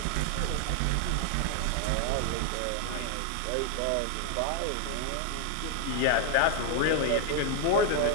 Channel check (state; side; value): different; both; correlation 0.00